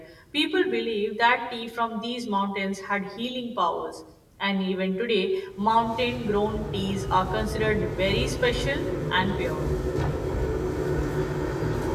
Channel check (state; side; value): identical; both; correlation 1.00